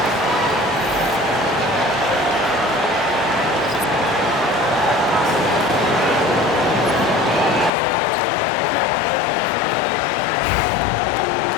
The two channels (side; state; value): right; drops out; at 7.7 s